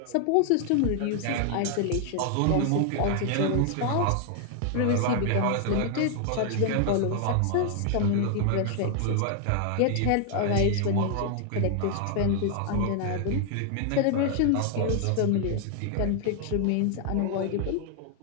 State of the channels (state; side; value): different; both; correlation 0.00